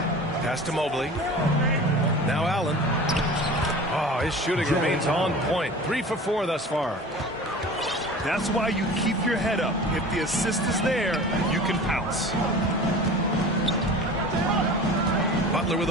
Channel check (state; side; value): normal; both; correlation 0.38